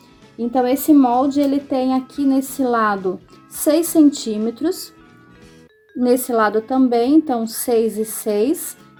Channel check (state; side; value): identical; both; correlation 1.00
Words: Então, esse molde, ele tem aqui nesse lado 6 centímetros, nesse lado também, então 6 e 6.